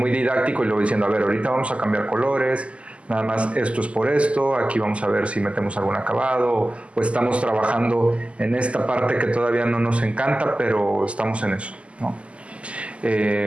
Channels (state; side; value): late; left; 0.058 ms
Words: didáctico y le voy diciendo, a ver, ahorita vamos a cambiar colores, nada más esto es por esto, aquí vamos a ver si metemos algún acabado o estamos trabajando en esta parte que todavía no nos encanta, pero estamos en eso, ¿no?